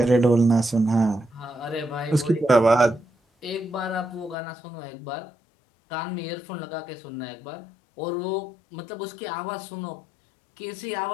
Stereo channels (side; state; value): right; drops out; at 4.4 s